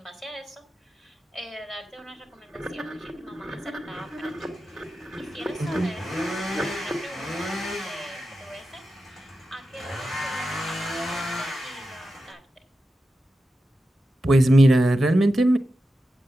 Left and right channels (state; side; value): normal; both; correlation 0.91